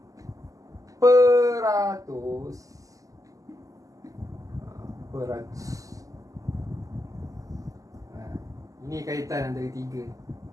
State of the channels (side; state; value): left; late; 0.16 ms